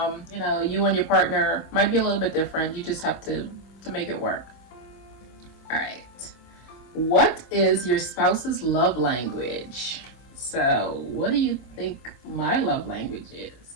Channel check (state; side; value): late; right; 25 ms